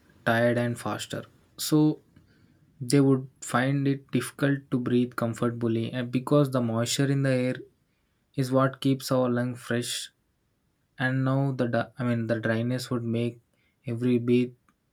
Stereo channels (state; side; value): identical; both; correlation 1.00